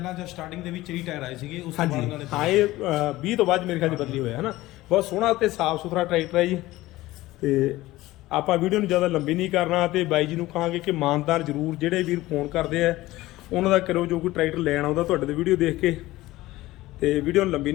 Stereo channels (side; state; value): right; quieter; 17.6 dB